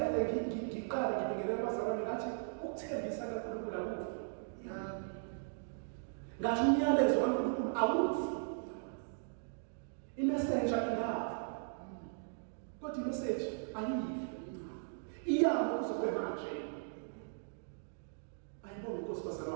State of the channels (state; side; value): silent; left; digital silence